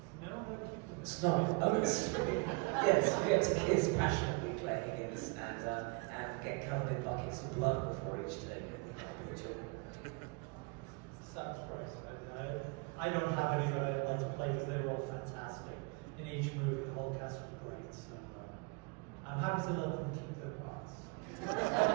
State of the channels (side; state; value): left; quieter; 30.8 dB